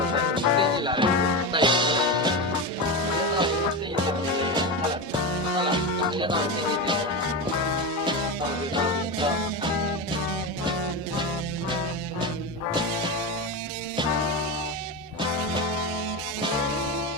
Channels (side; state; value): both; normal; correlation 0.18